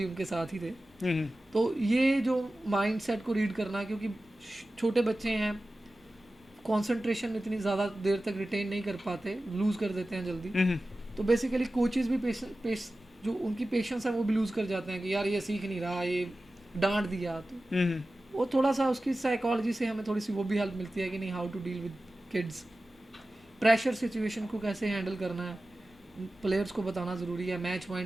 उनके साथ ही थे। तो ये जो माइंड सेट को रीड करना, क्योंकि छोटे बच्चे हैं, कंसंट्रेशन इतनी ज़्यादा देर तक रिटेन नहीं कर पाते, लूज़ कर देते हैं जल्दी। तो बेसिकली कोचेस भी जो उनकी पेशेंस है वो भी लूज़ कर जाते हैं कि यार ये सीख नहीं रहा, ये डांट दिया। तो वो थोड़ा सा उसकी साइकोलॉजी से हमें थोड़ी सी वो भी हेल्प मिलती है कि नहीं, how to deal with kids, pressure situation को कैसे हैंडल करना है, प्लेयर्स को बताना ज़रूरी है, मैच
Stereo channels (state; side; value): normal; both; correlation 0.95